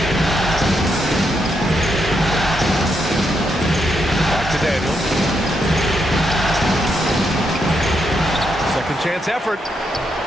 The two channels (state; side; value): normal; both; correlation 0.80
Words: Back to Daniels. Second chance effort.